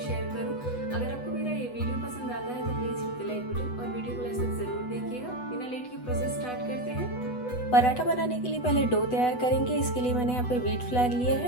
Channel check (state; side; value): late; right; 8.1 ms